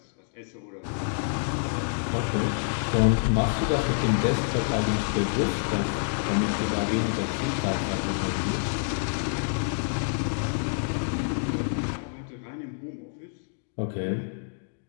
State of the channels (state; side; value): silent; right; digital silence